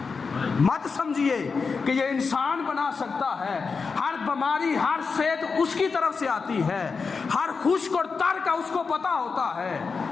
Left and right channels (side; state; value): right; quieter; 4.9 dB